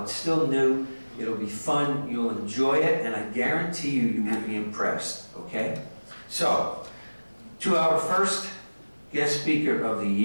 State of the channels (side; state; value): both; inverted; correlation -1.00